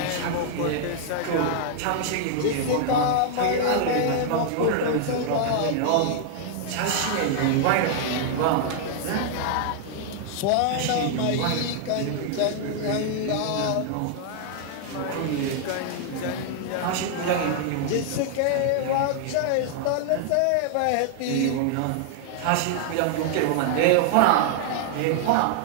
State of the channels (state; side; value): different; both; correlation -0.01